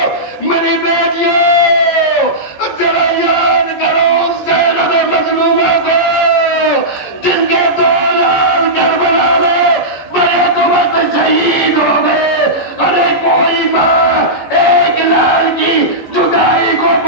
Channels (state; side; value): late; right; 14 ms